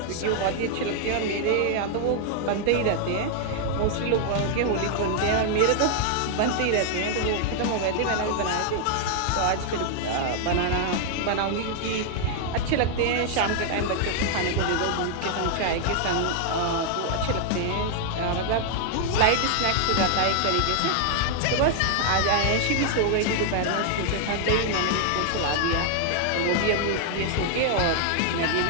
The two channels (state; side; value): different; both; correlation 0.00